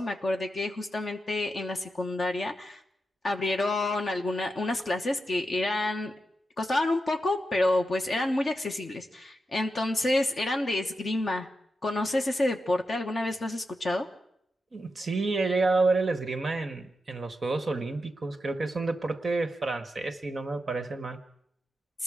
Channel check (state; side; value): normal; both; correlation 0.88